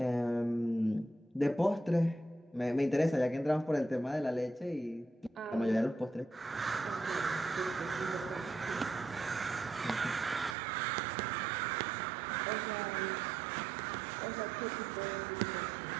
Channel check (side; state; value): left; drops out; at 10.6 s